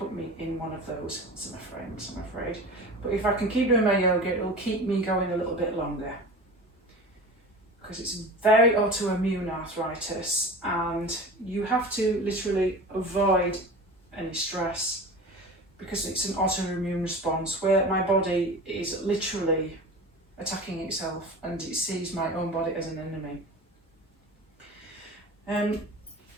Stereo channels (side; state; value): both; normal; correlation 0.34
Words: me in one of those, I'm afraid. But if I can keep doing my yoga, it'll keep me going a little bit longer. Because it's very autoimmune arthritis, and you have to literally avoid any stress because it's an autoimmune response where my body is literally attacking itself and it sees my own body as an enemy.